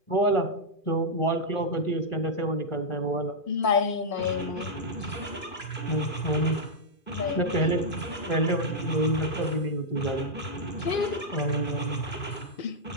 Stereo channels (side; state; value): right; late; 2.4 ms